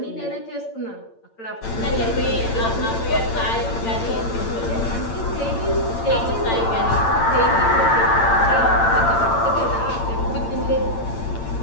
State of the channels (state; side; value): late; right; 8.8 ms